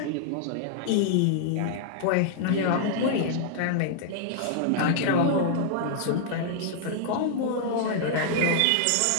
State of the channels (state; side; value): different; both; correlation -0.01